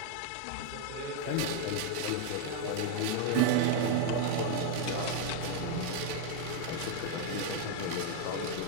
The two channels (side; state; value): both; different; correlation 0.00